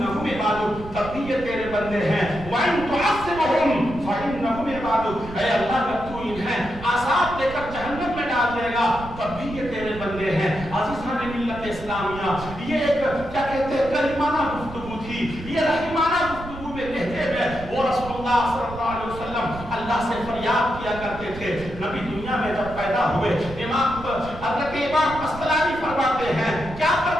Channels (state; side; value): noise; right; rumble, 13 dB below the sound